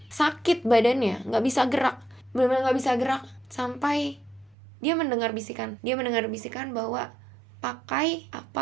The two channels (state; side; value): drops out; left; at 4.5 s